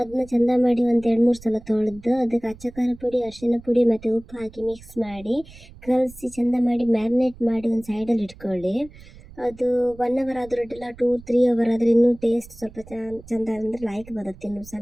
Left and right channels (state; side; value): noise; right; rumble, 20 dB below the sound